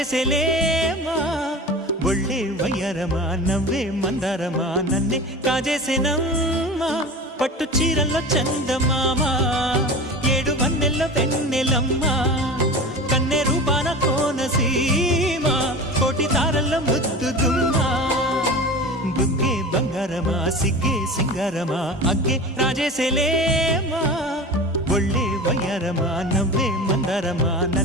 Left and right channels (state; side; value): normal; both; correlation 0.33